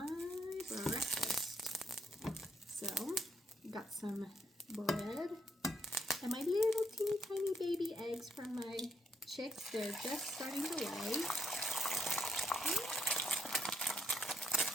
breakfast. So you got some bread and my little teeny tiny baby eggs from my chicks. They're just starting to lay.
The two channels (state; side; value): normal; both; correlation 0.75